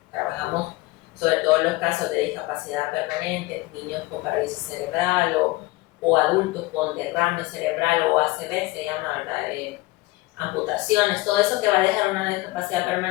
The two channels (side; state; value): right; quieter; 20.6 dB